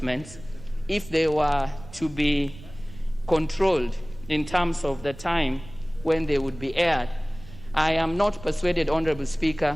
if they were to be controlled in terms of the time when they would be aired, I am not persuaded, Honorable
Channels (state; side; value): noise; right; rumble, 17 dB below the sound